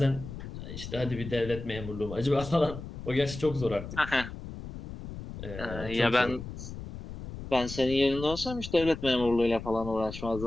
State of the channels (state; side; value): noise; left; rumble, 10 dB below the sound